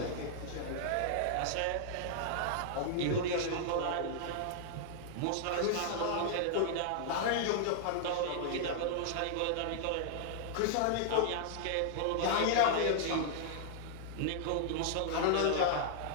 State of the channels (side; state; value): both; different; correlation -0.01